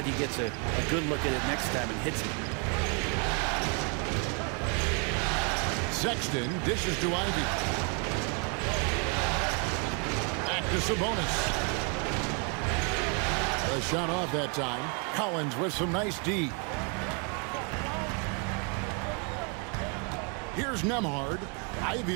he gets a good look at it next time and hits it. Sexton dishes to Ivy. Back to Sabonis. A shot off that time. Collins with some nice D. Here's Nembhard.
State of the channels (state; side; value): quieter; left; 36.1 dB